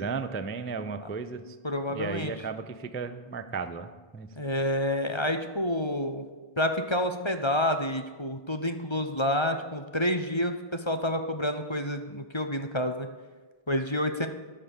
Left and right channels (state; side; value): late; right; 1.3 ms